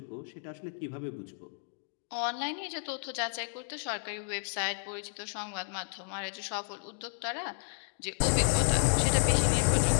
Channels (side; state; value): right; silent; digital silence